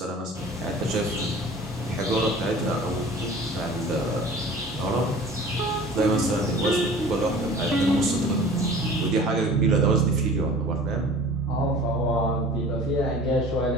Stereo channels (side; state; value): both; normal; correlation 0.44